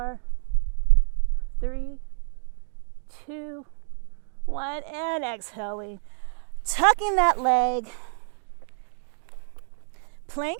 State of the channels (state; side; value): silent; left; 60 dB below the other